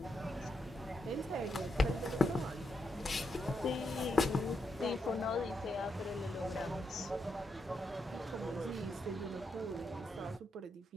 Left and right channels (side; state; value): both; normal; correlation 0.82